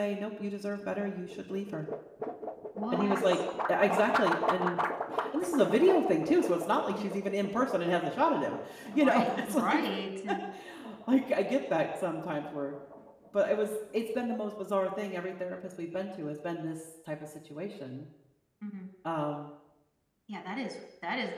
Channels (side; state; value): both; identical; correlation 1.00